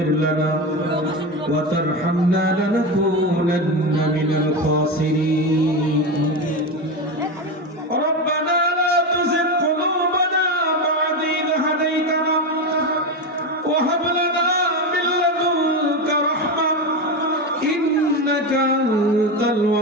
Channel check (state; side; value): normal; both; correlation 0.17